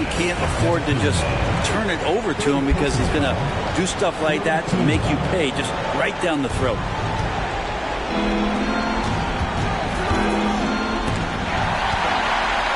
can't afford to just turn it over to him, because he's going to do stuff like that to make you pay just right down the throat.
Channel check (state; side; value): identical; both; correlation 1.00